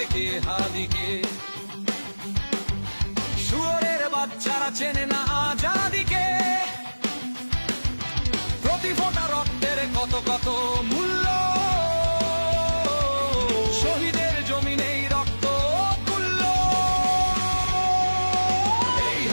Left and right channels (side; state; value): both; inverted; correlation -1.00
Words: হাদিকে হাদিকে। শুয়োরের বাচ্চারা চেনে না আজাদিকে, প্রতি ফোঁটা রক্তের কত কত মূল্য, শহীদের জমিনেই রক্ত তুল্য। এই